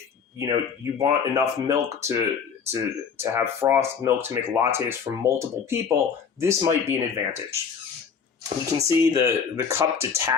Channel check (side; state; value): right; quieter; 6.5 dB